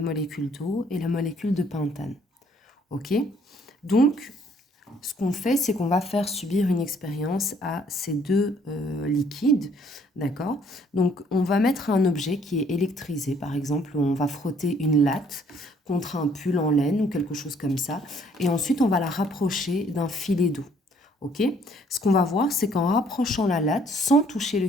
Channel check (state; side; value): normal; both; correlation 0.63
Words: molécule d'eau et la molécule de pentane. Ok? Donc, ce qu'on fait, c'est qu'on va faire subir une expérience à ces deux liquides, d'accord? Donc, on va mettre un objet qui est électrisé, par exemple, on va frotter une latte contre un pull en laine ou quelque chose comme ça, et ensuite, on va la rapprocher d'un filet d'eau. Ok? Ce qu'on va voir, c'est qu'en rapprochant la latte, sans toucher le